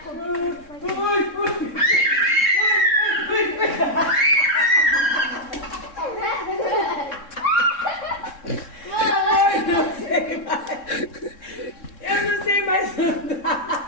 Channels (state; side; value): late; right; 3.7 ms